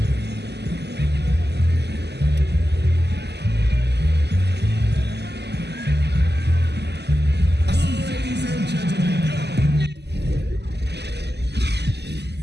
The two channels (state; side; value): late; left; 0.49 ms